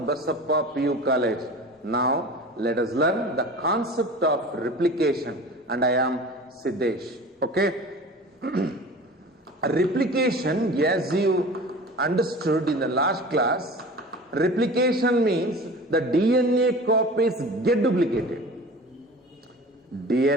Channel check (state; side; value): normal; both; correlation 0.38